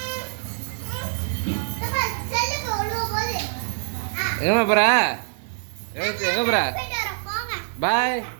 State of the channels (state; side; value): silent; left; digital silence